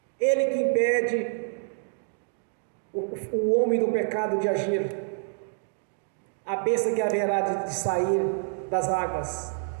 Ele que impede o homem do pecado de agir, a besta que haverá de sair das águas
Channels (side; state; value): left; silent; digital silence